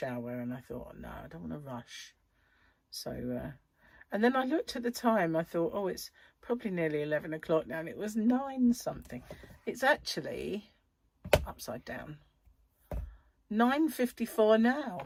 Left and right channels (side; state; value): both; identical; correlation 1.00